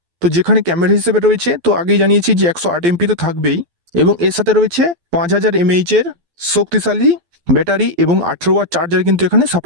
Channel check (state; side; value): late; left; 12 ms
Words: তো যেখানে ক্যামেরা হিসেবে রয়েছে, তো আগেই জানিয়েছি যে 108 এমপি তো থাকবেই এবং এর সাথে রয়েছে 5000 mAh এর শক্তিশালী ব্যাটারি এবং 18 ওয়াট চার্জার কিন্তু এখানে